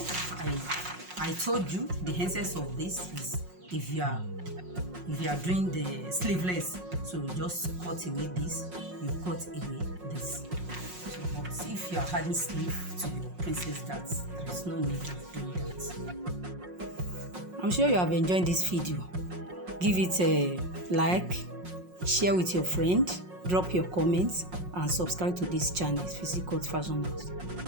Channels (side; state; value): left; late; 5.5 ms